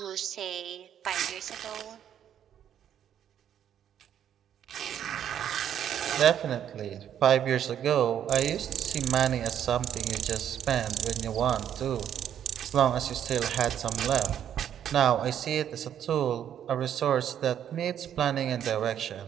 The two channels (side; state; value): left; quieter; 9.8 dB